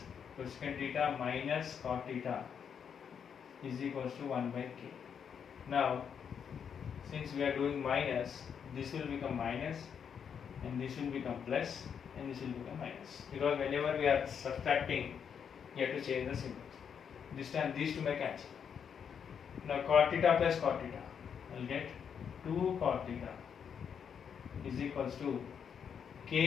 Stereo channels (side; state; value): right; quieter; 7.4 dB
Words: cosecant theta minus cot theta is equals to 1 by k. Now since we are doing minus, this will become minus, and this will become plus, and this will become minus, because whenever we are subtracting, you have to change the symbol. This time these two may cancel. Now cot theta plus cot theta, I will get 2 cot theta is equals to